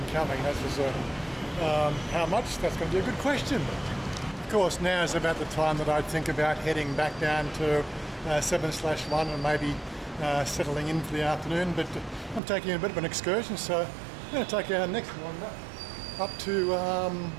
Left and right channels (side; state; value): left; drops out; at 12.4 s